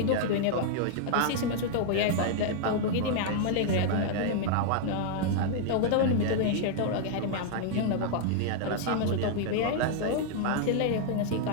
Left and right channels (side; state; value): both; different; correlation 0.00